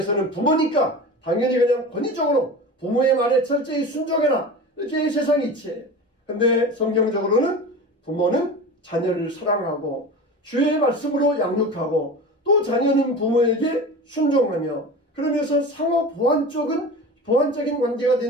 부모니까 당연히 그냥 권위적으로 부모의 말에 철저히 순종해라 이렇게 세상이 이치해요. 근데 성경적으로는 부모는 자녀를 사랑하고 주의 말씀으로 양육하고 또 자녀는 부모에게 순종하며 그러면서 상호 보완적인 관계가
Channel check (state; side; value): normal; both; correlation 0.32